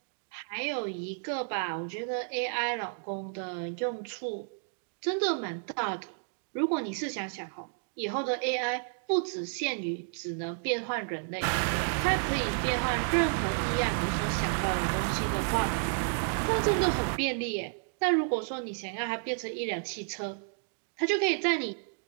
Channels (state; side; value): silent; left; digital silence